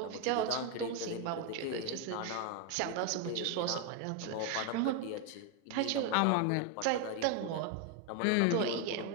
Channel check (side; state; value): both; different; correlation 0.01